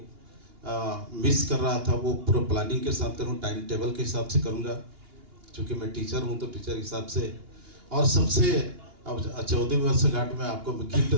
मिस कर रहा था वो पूरा प्लानिंग के साथ करूँ, टाइम टेबल के हिसाब से करूँगा। क्योंकि मैं टीचर हूँ तो टीचर के हिसाब से। और सबसे अब 14वीं वर्षगांठ में आपको मैं गिफ्ट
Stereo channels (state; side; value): late; left; 2.8 ms